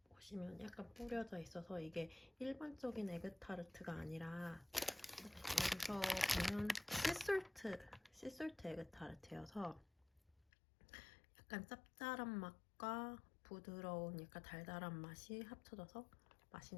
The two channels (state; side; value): drops out; right; at 10.5 s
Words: 보시면 약간 뿌려져 있어서 이게 일반적인 에그타르트가 아니라 여기서 보면 씨솔트 에그타르트여서 약간 짭짤한 맛과 부드러운 약간 달달한 맛이 합쳐져서